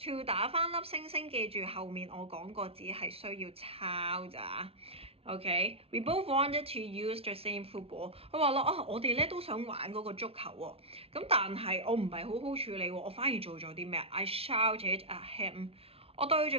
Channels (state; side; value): late; left; 0.28 ms